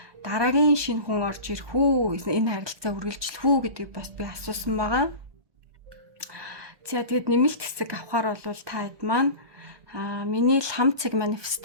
дараагийн шинэ хүн орж ирэх үү, энэ харилцаа үргэлжлэх үү гэдгийг бас би асуусан байгаа. За тэгээд нэмэлт хэсэг авахар бол та хэд маань миний ламцэг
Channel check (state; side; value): late; left; 1.2 ms